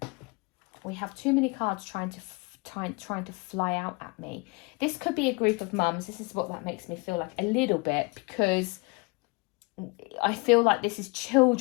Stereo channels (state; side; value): quieter; right; 29.0 dB